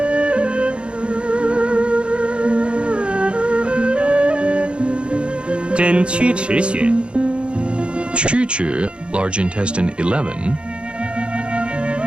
Quzhi, large intestine 11.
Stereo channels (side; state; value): left; late; 0.056 ms